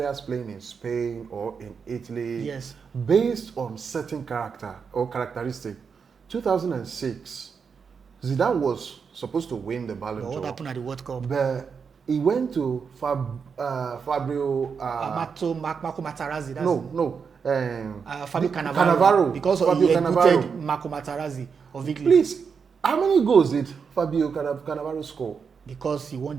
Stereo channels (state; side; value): quieter; left; 6.0 dB